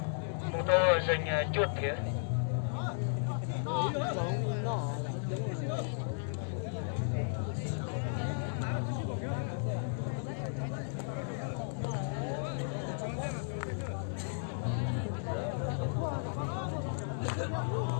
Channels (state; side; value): silent; right; digital silence